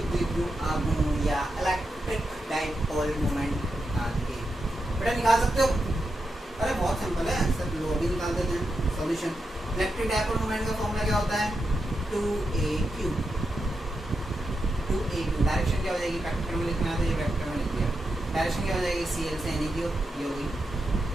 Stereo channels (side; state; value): both; normal; correlation 0.87